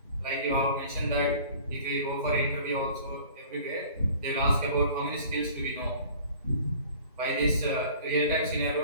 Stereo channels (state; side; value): inverted; both; correlation -0.47